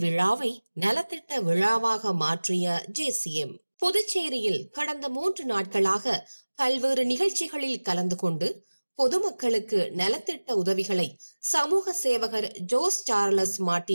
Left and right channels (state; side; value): inverted; both; correlation -1.00